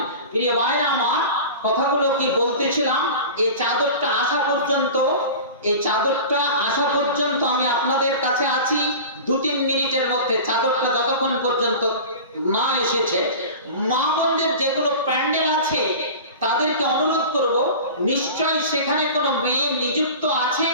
প্রিয় ভাইরা আমার, কথাগুলো কি বলতেছিলাম, এই চাদরটা আসা পর্যন্ত আমি আপনাদের কাছে আছি 2-3 মিনিটের মধ্যে। চাদরটা যতক্ষণ পর্যন্ত না এসেছে, মা বোনদের যেগুলো প্যান্ডেল আছে তাদেরকে অনুরোধ করব, নিশ্চয়ই সেখানে কোনো মেয়ে নিযুক্ত আছে,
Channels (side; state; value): both; inverted; correlation -0.34